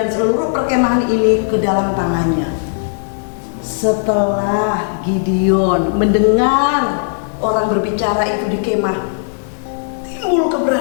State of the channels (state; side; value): silent; right; digital silence